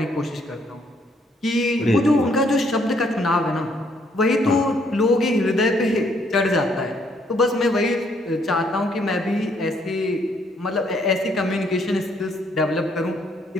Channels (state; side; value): normal; both; correlation 0.69